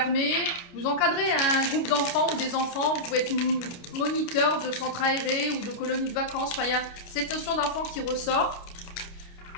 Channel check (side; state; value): right; late; 29 ms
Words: Vous encadrez un groupe d'enfants ou des enfants. Vous pouvez être moniteur de centres aérés ou de colonies de vacances. Enfin, il y a cette notion d'enfant qui ressort.